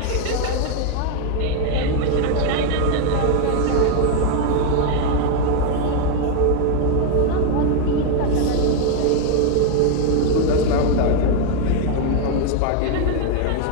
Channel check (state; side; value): different; both; correlation 0.01